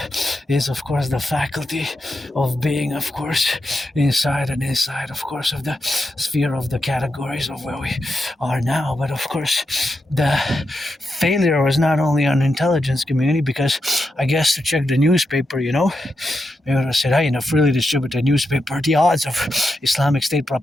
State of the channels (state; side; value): normal; both; correlation 0.86